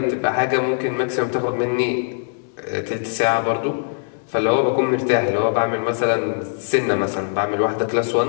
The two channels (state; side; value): silent; right; 65 dB below the other